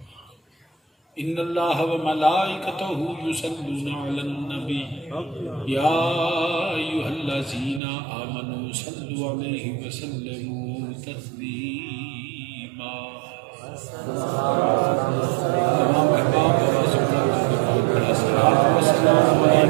إن الله وملائكته يصلون على النبي يا أيها الذين آمنوا صلوا عليه وسلموا تسليما تمام احباب والصلاة والسلام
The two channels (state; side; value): drops out; left; at 7.8 s